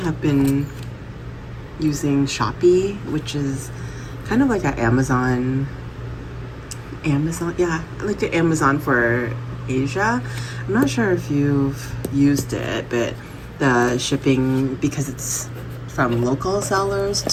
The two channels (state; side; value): identical; both; correlation 1.00